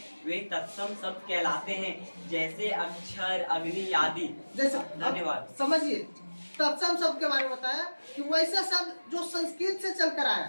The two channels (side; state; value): both; inverted; correlation -1.00